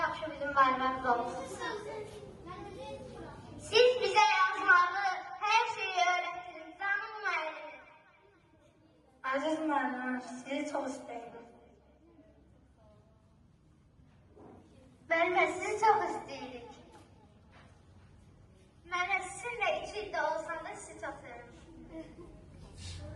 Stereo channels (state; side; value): identical; both; correlation 1.00